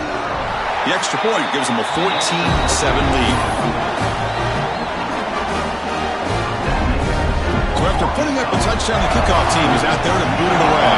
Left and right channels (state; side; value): identical; both; correlation 1.00